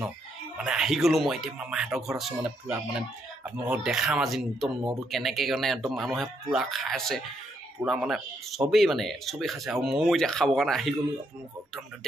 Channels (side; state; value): both; normal; correlation 0.76